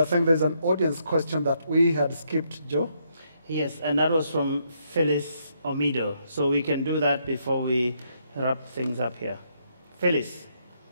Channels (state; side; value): inverted; both; correlation -0.75